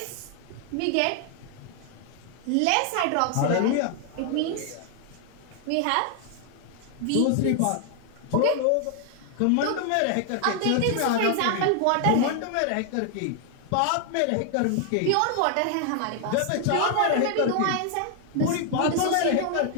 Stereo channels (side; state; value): both; different; correlation 0.00